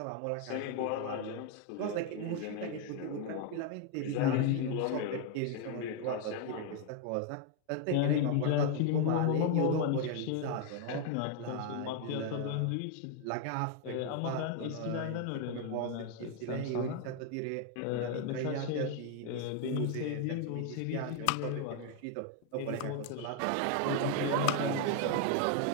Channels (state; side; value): different; both; correlation 0.01